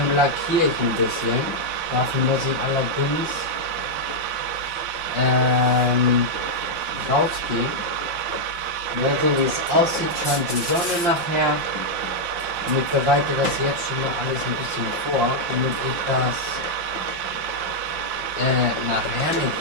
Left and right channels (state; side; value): late; left; 5.7 ms